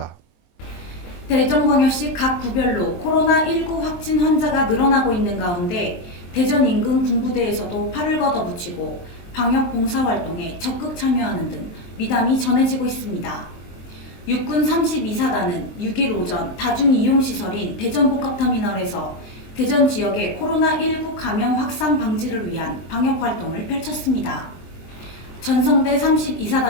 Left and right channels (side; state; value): right; late; 23 ms